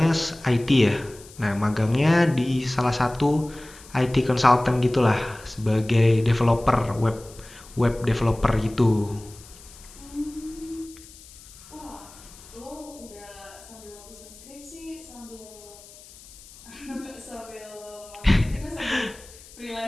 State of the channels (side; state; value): left; noise; hiss, 21 dB below the sound